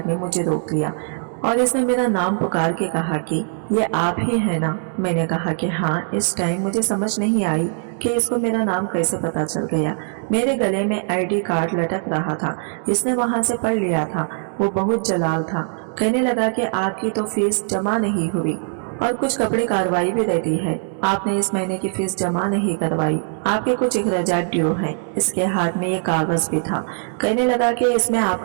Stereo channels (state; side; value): silent; left; 65 dB below the other